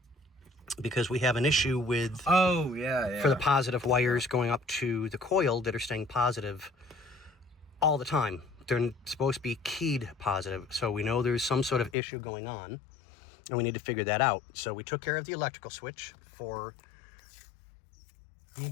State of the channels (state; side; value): drops out; right; at 12.0 s